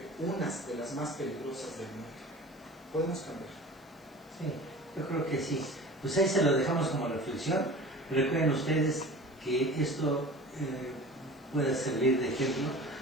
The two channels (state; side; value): noise; left; hiss, 29 dB below the sound